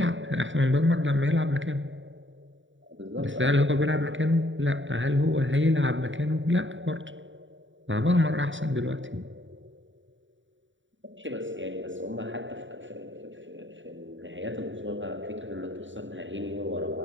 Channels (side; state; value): left; late; 0.55 ms